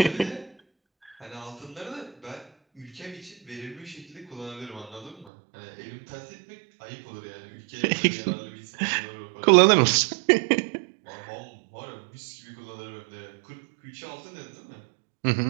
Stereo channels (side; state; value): left; drops out; at 5.2 s